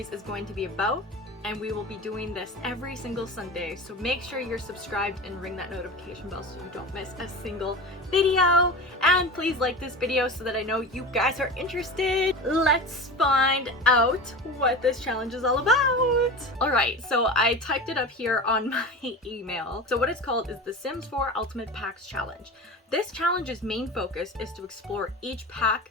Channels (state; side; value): normal; both; correlation 0.30